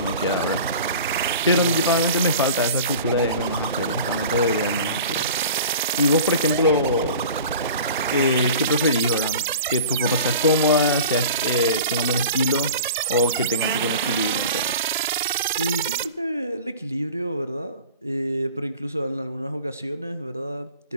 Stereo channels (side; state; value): both; inverted; correlation -0.40